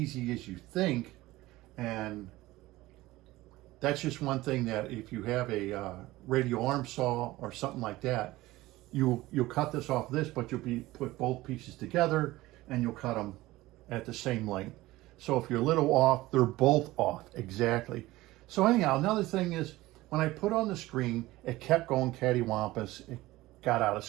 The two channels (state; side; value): quieter; left; 18.1 dB